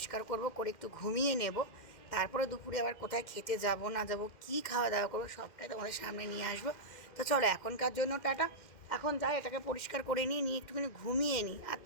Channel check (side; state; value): right; late; 2.1 ms